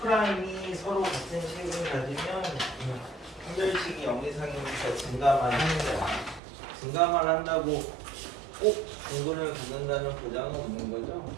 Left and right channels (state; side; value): drops out; left; at 6.4 s